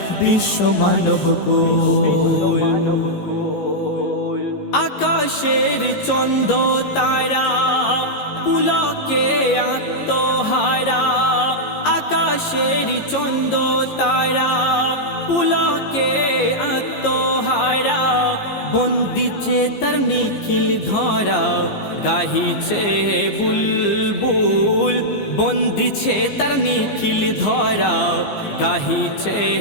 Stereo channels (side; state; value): right; late; 15 ms